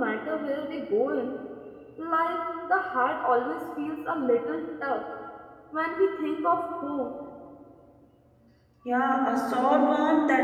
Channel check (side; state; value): both; identical; correlation 1.00